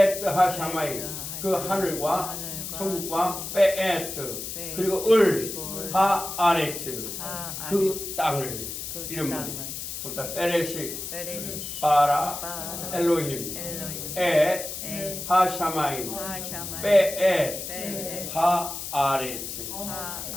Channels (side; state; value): left; noise; hiss, 7 dB below the sound